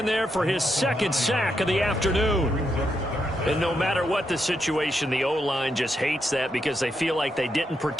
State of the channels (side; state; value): both; normal; correlation 0.81